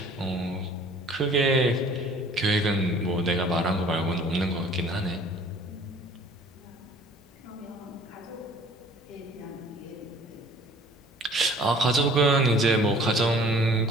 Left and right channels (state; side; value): normal; both; correlation 0.52